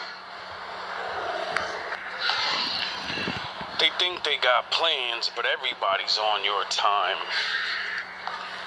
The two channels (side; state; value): both; identical; correlation 1.00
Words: They think they got plans, but everybody's on your time.